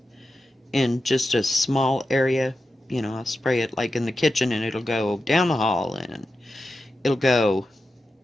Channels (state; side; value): normal; both; correlation 0.91